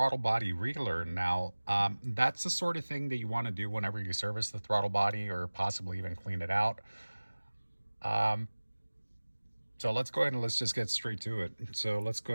Body Relearn. Now, that's the sort of thing that you want to do whenever you service the throttle body or possibly even clean it out. So let's go ahead and let's just get straight to it. So let's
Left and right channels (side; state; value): both; inverted; correlation -1.00